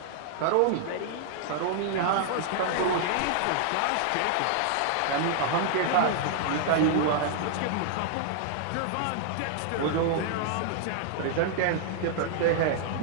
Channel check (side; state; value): both; different; correlation -0.01